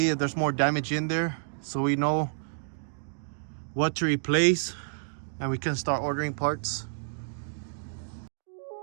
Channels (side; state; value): left; silent; digital silence